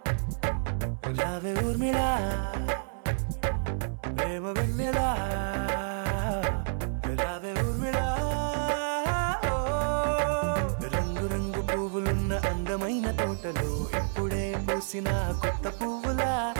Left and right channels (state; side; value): silent; left; 58 dB below the other